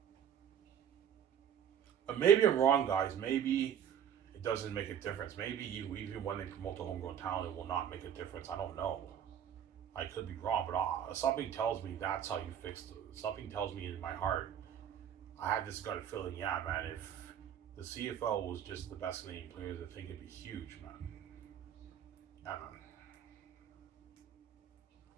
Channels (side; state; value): left; quieter; 9.2 dB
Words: But maybe I'm wrong, guys. Maybe it doesn't make a difference. Maybe even when they promote the homegrown talent, it will not make a difference. I don't know. I could be wrong, but something tells me that's how you fix it. Something tells me in my heart. I had this gut feeling, yeah, man, if the CFL was just the best Canadian players, I think it'd be huge, man. Yeah, man.